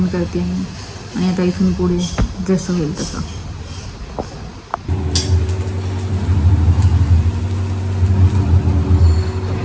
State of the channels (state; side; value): identical; both; correlation 1.00